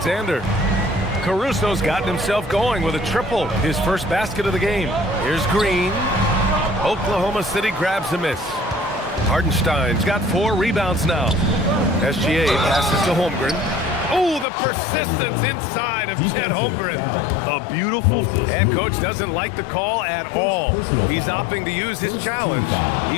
Caruso's gotten himself going with a triple, his first basket of the game. Here's Green. Oklahoma City grabs a miss. Hartenstein's got 4 rebounds now. SGA passes to Holmgren. Oh, the persistence inside of Chet Holmgren. A beautiful. And coach doesn't like the call at all. He's opting to use his challenge.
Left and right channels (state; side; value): drops out; right; at 14.5 s